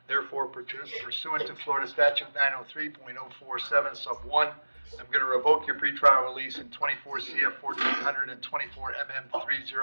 Therefore, pursuant to Florida Statute 903.047 sub 1, I'm going to revoke your pretrial release in 24 CF 1400 and 24 MM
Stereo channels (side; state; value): both; inverted; correlation -1.00